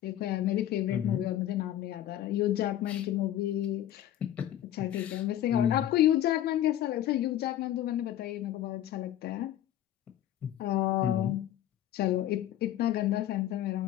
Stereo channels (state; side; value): quieter; right; 12.1 dB